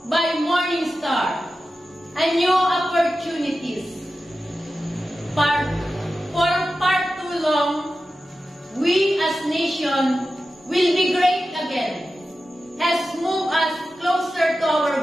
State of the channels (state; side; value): normal; both; correlation 0.93